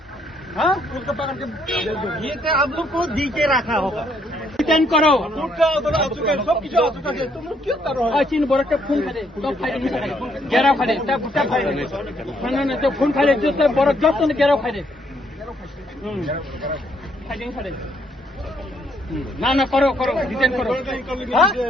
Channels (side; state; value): both; normal; correlation 0.70